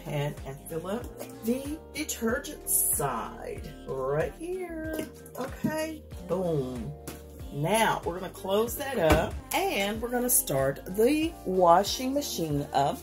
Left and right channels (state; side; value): identical; both; correlation 1.00